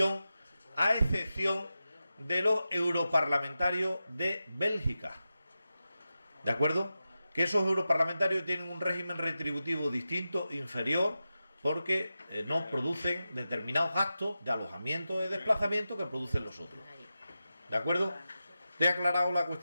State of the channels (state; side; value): inverted; both; correlation -0.92